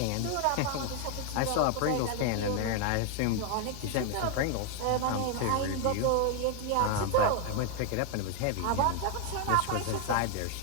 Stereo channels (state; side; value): different; both; correlation 0.01